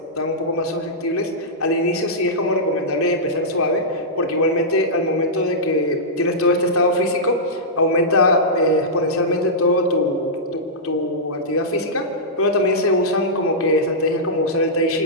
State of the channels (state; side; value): normal; both; correlation -0.13